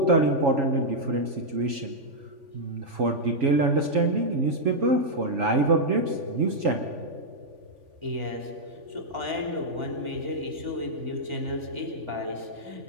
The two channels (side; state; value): left; late; 3.5 ms